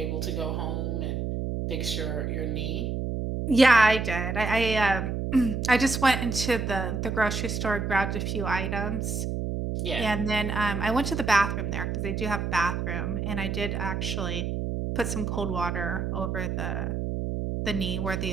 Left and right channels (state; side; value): noise; right; hum, 2 dB below the sound